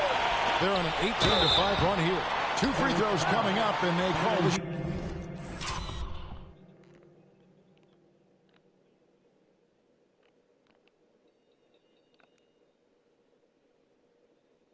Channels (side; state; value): both; identical; correlation 1.00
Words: They're on an 18-5 run here. 2 free throws coming up, and they call the...